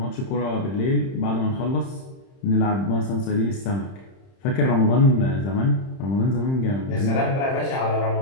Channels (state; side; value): late; right; 30 ms